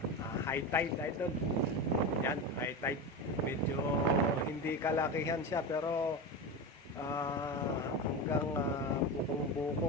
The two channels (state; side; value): normal; both; correlation 0.21